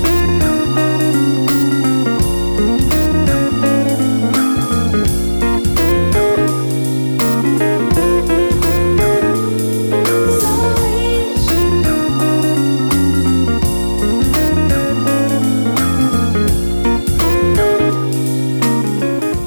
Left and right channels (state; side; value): inverted; both; correlation -1.00